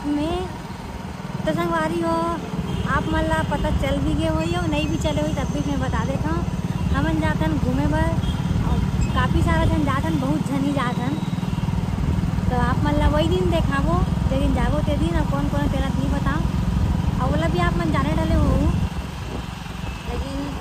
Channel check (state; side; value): identical; both; correlation 1.00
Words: में। तो संगवारी हो आप मन ला पता चल भी गए हो या नहीं भी चले हुई तब भी मैं बता देता हूँ। हमन जातन घूमे बर काफ़ी सारा जन जातन बहुत झनी जातन। तो आप मन ला वही दिन देखाबो जे दिन जाबो ते दिन और कौन कौन तेरा नहीं बताओ और बोला भी आप मन जाने डाले हो लेकिन